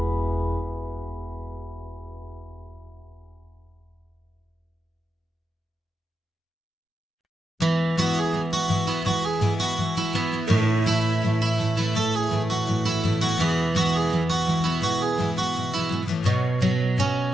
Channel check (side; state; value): both; normal; correlation 0.87